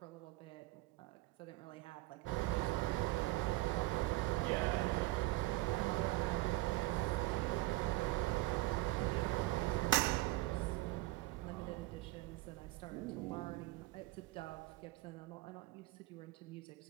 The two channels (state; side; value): quieter; left; 19.3 dB